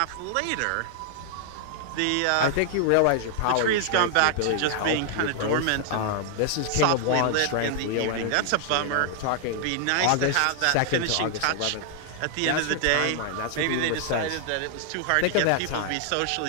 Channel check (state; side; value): different; both; correlation 0.00